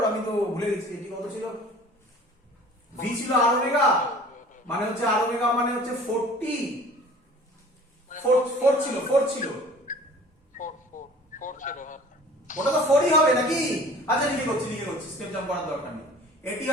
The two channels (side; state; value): both; normal; correlation 0.47